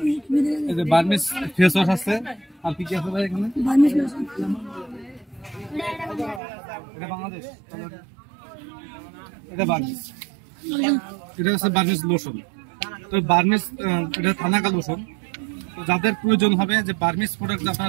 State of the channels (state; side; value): drops out; left; at 6.4 s